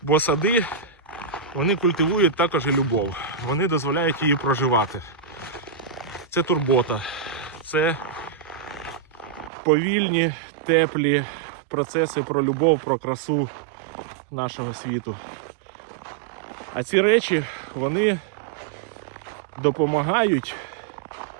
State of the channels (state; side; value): drops out; left; at 9.5 s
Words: Бо сади, вони культивують також і любов. Вони дозволяють її проживати. Це турбота. Це повільні, теплі процеси про любов, про красу нашого світу. А ці речі, вони допомагають